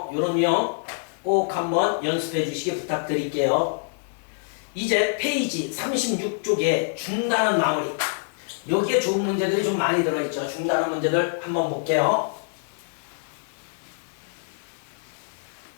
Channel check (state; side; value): silent; right; digital silence